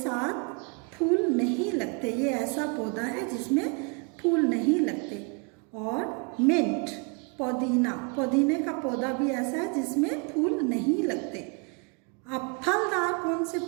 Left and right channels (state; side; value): quieter; left; 34.6 dB